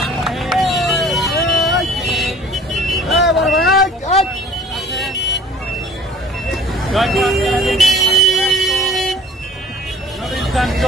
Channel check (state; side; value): normal; both; correlation 0.48